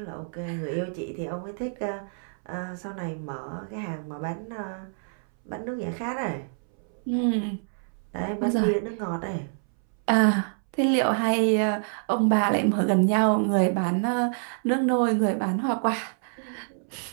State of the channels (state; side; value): silent; left; 60 dB below the other